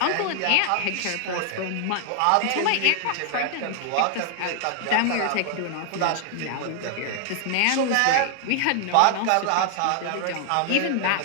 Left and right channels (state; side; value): different; both; correlation 0.00